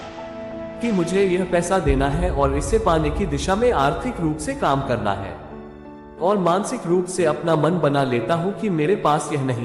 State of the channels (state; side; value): identical; both; correlation 1.00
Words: कि मुझे यह पैसा देना है और इसे पाने की दिशा में आर्थिक रूप से काम करना है, और मानसिक रूप से अपना मन बना लेता हूँ कि मेरे पास यह